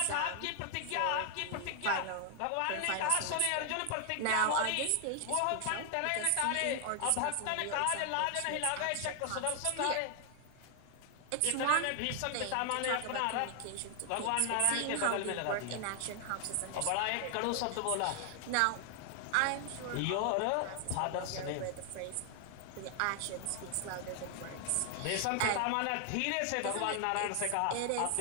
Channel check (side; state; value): both; different; correlation 0.00